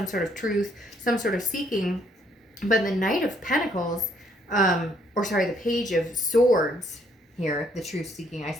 sort of truth, some sort of seeking, but the Knight of Pentacles, the Page of Swords here, the truth seeking, I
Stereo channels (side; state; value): both; normal; correlation 0.68